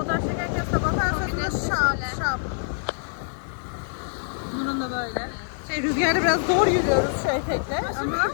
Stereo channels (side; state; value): right; silent; digital silence